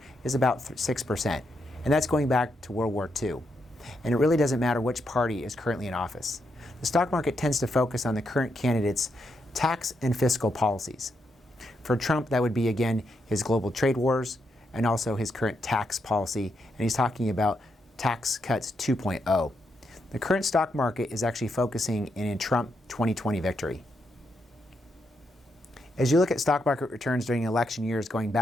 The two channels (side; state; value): both; normal; correlation 0.81